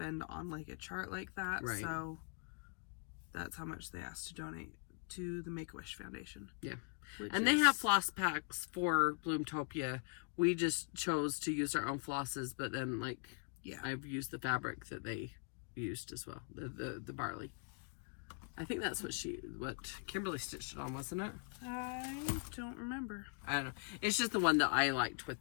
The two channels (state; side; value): quieter; right; 39.6 dB